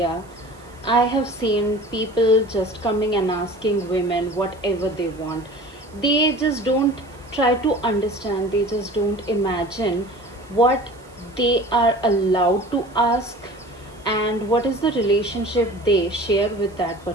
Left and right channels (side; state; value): right; noise; hiss, 29 dB below the sound